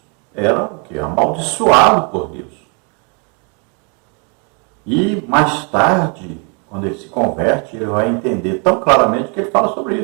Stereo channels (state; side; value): quieter; left; 36.0 dB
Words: era o quê? Amaldiçoado por Deus. E mais tarde, quando ele se converte, ele vai entender tão claramente que ele fala sobre